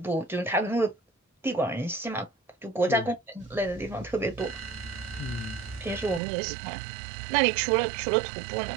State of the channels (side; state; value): left; drops out; at 6.2 s